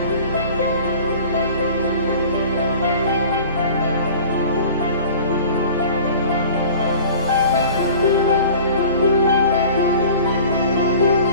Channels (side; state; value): both; inverted; correlation -0.43